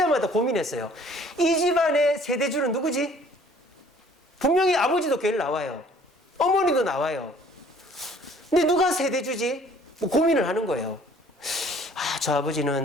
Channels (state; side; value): normal; both; correlation 0.55